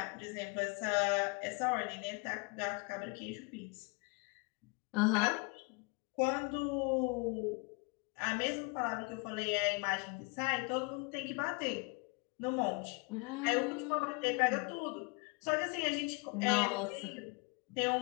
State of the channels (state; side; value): quieter; right; 30.3 dB